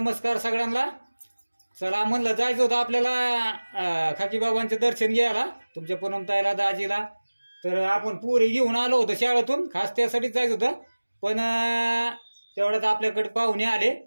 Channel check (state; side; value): inverted; both; correlation -1.00